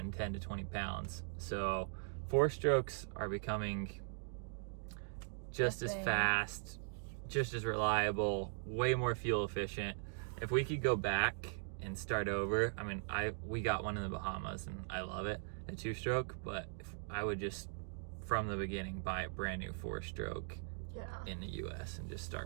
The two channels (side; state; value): left; silent; digital silence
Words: 10 to 20 pounds. So 4-strokes are becoming just as fast, just as reliable, way more fuel efficient. If we could go back and start over, I mean, we got one in the Bahamas and I love it, a 2-stroke, but if I would just from the beginning buy a brand new 4-stroke in the US and just